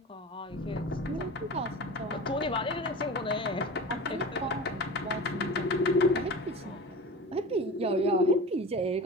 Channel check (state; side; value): normal; both; correlation 0.32